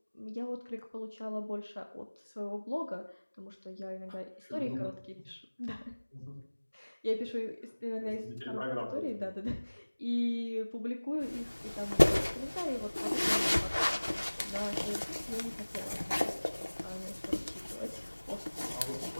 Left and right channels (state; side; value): inverted; both; correlation -1.00